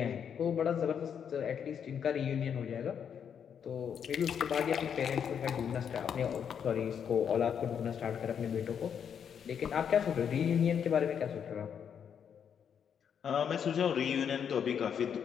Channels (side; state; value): right; quieter; 7.8 dB